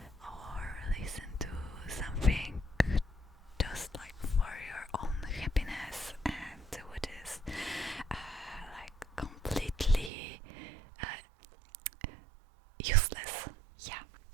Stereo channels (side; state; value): left; drops out; at 10.1 s